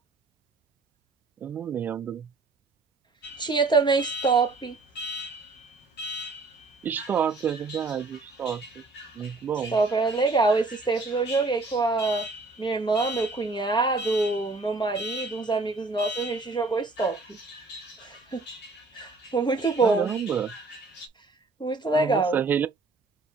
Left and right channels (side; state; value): left; quieter; 3.6 dB